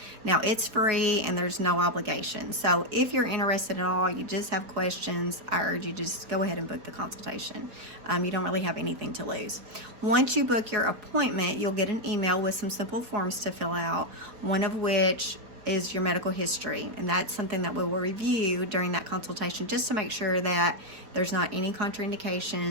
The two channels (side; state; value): left; late; 4.4 ms